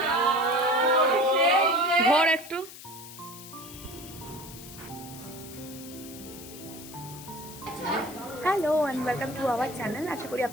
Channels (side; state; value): left; noise; hiss, 15 dB below the sound